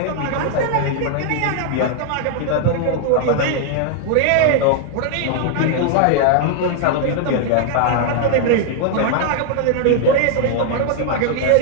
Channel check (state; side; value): different; both; correlation 0.00